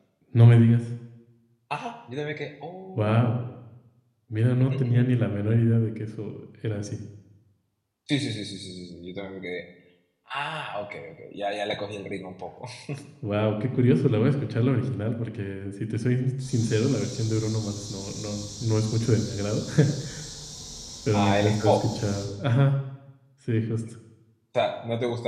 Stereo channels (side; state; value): both; identical; correlation 1.00